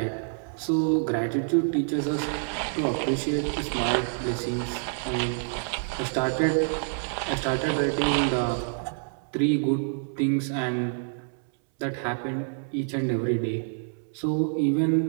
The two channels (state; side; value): silent; left; 60 dB below the other